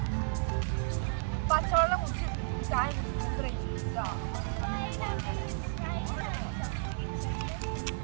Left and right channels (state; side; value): silent; left; 56 dB below the other